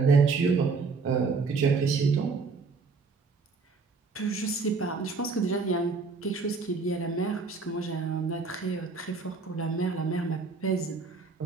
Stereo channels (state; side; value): quieter; left; 4.5 dB